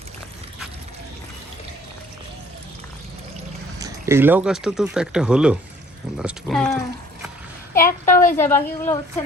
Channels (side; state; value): both; normal; correlation 0.55